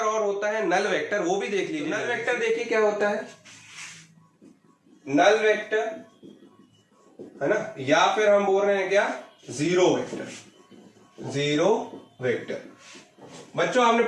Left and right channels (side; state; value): both; identical; correlation 1.00